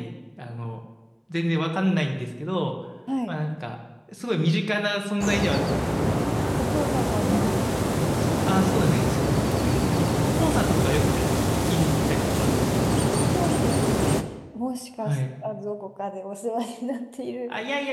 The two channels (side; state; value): both; identical; correlation 1.00